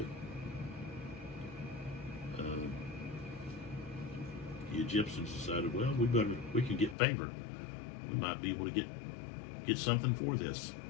The Egyptians decided, well, we can get favor. We might be able to get something for this.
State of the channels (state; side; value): drops out; right; at 7.0 s